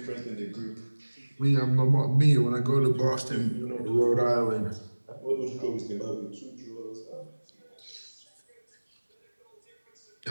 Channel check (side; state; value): both; inverted; correlation -1.00